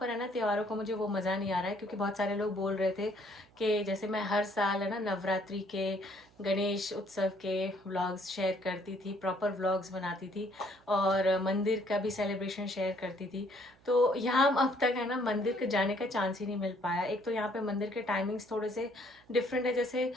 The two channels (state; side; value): noise; right; hum, 29 dB below the sound